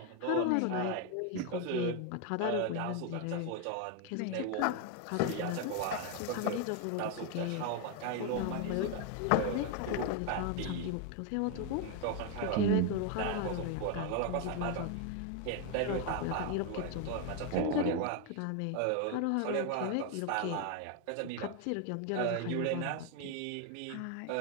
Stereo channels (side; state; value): both; different; correlation 0.01